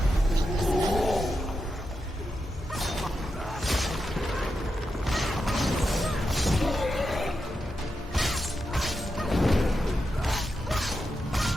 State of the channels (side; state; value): both; normal; correlation 0.87